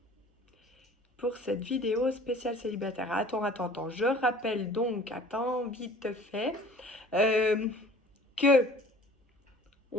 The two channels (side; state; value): both; normal; correlation 0.48